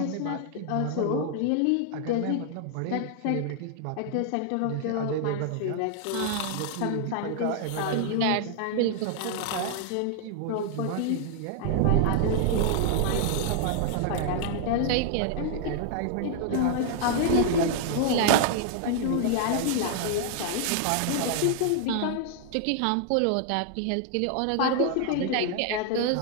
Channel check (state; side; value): different; both; correlation 0.00